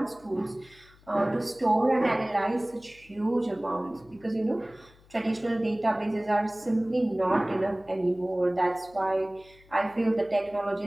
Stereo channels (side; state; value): left; noise; hum, 27 dB below the sound